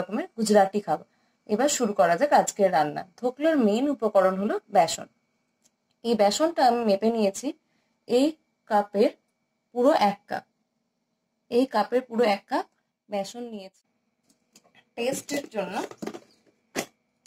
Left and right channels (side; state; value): both; identical; correlation 1.00